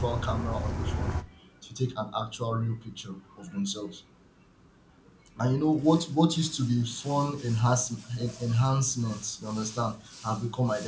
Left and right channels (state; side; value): identical; both; correlation 1.00